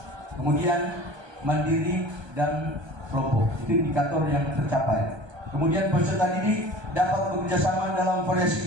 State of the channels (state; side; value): late; left; 1.2 ms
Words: kemudian mandiri dan kelompok. Itu indikator yang tercapai. Kemudian peserta didik dapat bekerjasama dalam variasi